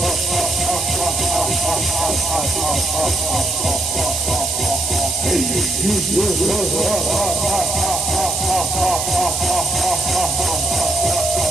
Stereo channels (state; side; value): noise; right; hiss, 2 dB below the sound